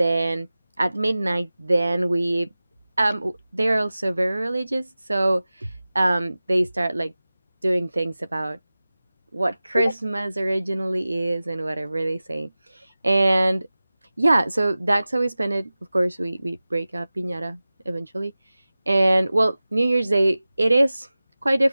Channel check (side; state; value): both; inverted; correlation -0.97